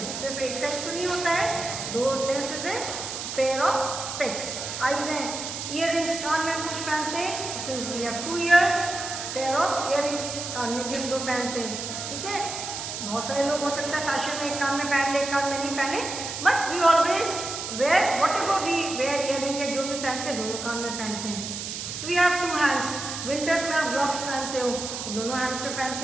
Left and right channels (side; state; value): right; noise; hiss, 6 dB below the sound